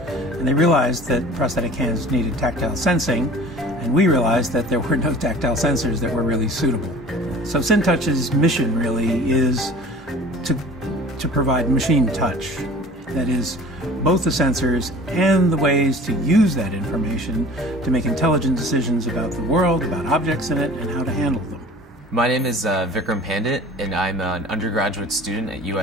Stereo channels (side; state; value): both; normal; correlation 0.44